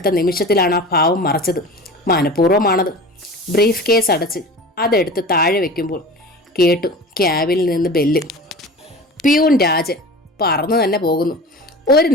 നിമിഷത്തിലാണ് ആ ഭാവം മറച്ചത്. മനഃപൂർവ്വമാണത്. ബ്രീഫ് കേസ് അടച്ച് അതെടുത്ത് താഴെ വെക്കുമ്പോൾ കേട്ടു ക്യാബിനിൽ നിന്ന് ബെല്ല്. പ്യൂൺ രാജൻ പറന്നു തന്നെ പോകുന്നു. ഒരു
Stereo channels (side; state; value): both; normal; correlation 0.36